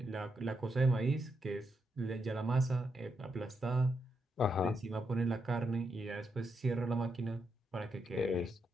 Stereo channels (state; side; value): normal; both; correlation 0.82